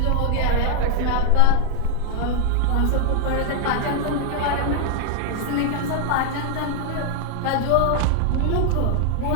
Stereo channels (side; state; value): both; different; correlation 0.00